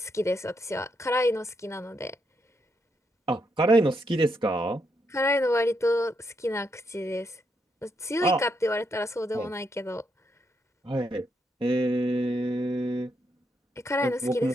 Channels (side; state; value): both; normal; correlation 0.79